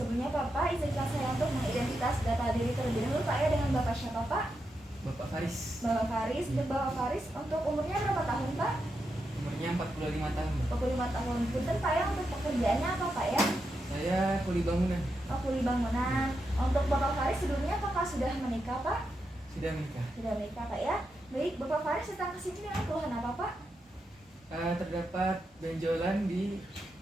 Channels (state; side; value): normal; both; correlation 0.85